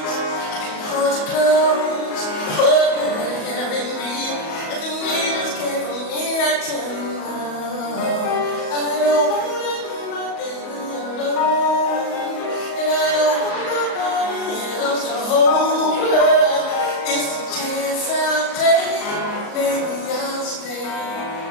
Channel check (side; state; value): right; late; 37 ms